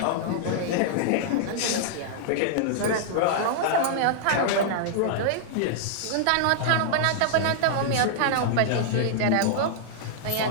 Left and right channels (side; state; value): both; different; correlation -0.01